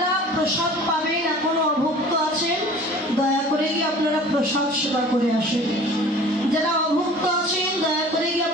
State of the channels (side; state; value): both; normal; correlation 0.45